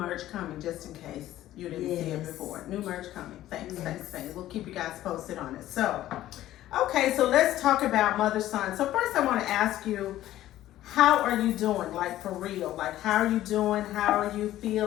coming, just in case you didn't see it before. New merch coming. Thanks. We'll keep you guys posted on it. So, okay, so let's talk about mother-son. So first I want to ask you, how are you doing? Like, for real. Like, how are you doing? How are you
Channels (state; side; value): quieter; right; 13.9 dB